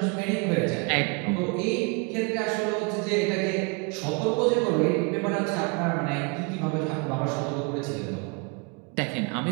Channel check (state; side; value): quieter; left; 31.7 dB